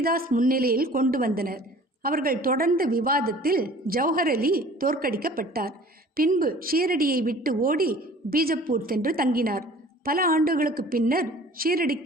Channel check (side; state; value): both; normal; correlation 0.47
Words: முன்னிலையில் கொண்டு வந்தனர். அவர்கள் தொடர்ந்த விவாதத்தில் ஜௌஹர் அலி தோற்கடிக்கப்பட்டார். பின்பு ஷீரடியை விட்டு ஓடி பீஜப்பூர் சென்று தங்கினார். பல ஆண்டுகளுக்கு பின்னர்